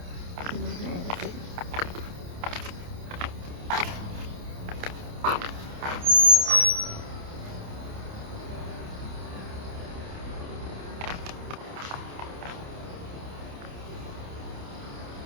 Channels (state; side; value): late; left; 28 ms